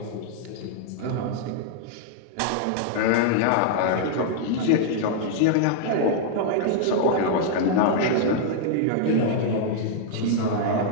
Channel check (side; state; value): both; different; correlation -0.01